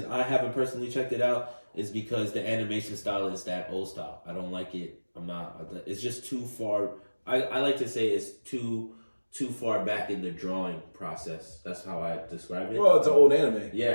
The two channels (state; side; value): inverted; both; correlation -1.00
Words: I haven't personally checked it out is because the animation style is that old style. I don't like it. It's just too far. I like to say it's too far back in the drawing process. That's how I describe it. Well, it's an old anime.